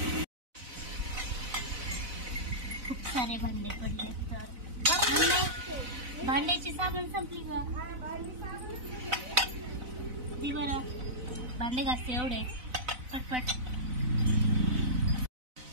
खूप सारे भांडे पडले तर भांड्याची साबण संपली का ती बरं भांडे घासते एवढे पटपट.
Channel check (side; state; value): left; late; 4.0 ms